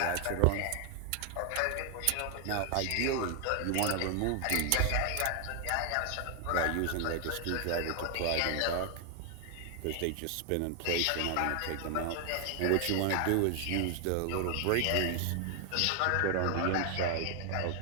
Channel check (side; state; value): both; different; correlation 0.00